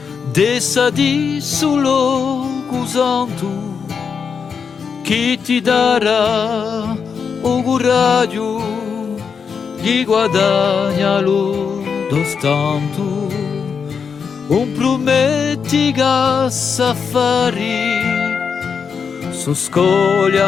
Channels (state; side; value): quieter; right; 6.2 dB